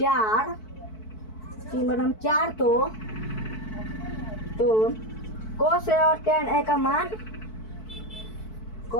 तो cos ए और tan ए का मान,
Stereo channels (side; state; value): right; late; 4.6 ms